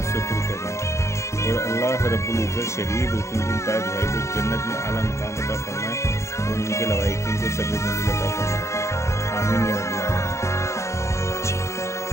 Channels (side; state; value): right; late; 0.14 ms